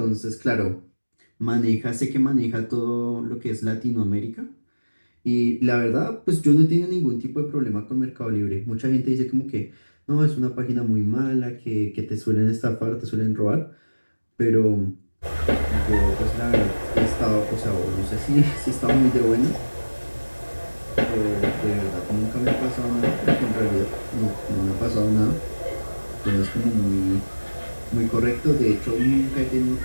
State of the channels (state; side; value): inverted; both; correlation -1.00